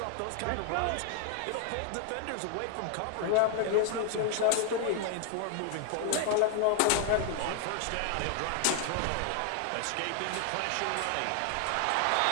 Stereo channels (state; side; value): different; both; correlation 0.00